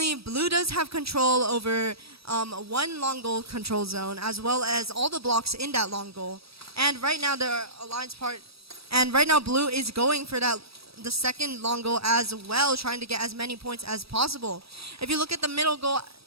blue does have control over one long goal control zone as well as all the blocks in that long goal. And right now blue is going for the second long goal as well, trying to get as many points as possible. If you look at the middle goal,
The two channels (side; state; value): left; late; 0.77 ms